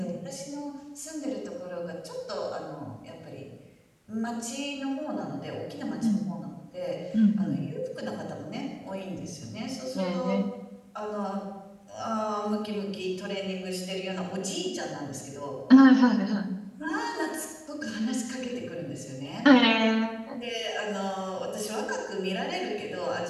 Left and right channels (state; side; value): identical; both; correlation 1.00